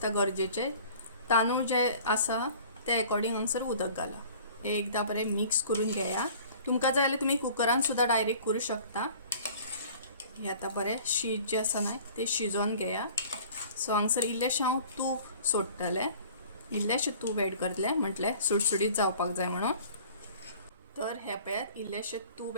गरजेचें. तांदूळ जे आसा ते अकॉर्डिंग हांगसर उदक घाला. हे एकदां बरें मिक्स करून घेया. तुमकां जाय जाल्यार तुमी कुकरान सुद्दां डायरेक्ट करूं शकता. हे आतां बरें शीत जें आसा न्हय तें शिजोवन घेया. सो हांगसर इल्लेशें हांव तूप सोडटलें, इल्लेशें तूप एड करतलें, म्हटलें सुटसुटीत जावपाक जाय म्हणून. तर हे पळयात इल्लेशें तूप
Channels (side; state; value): both; inverted; correlation -0.48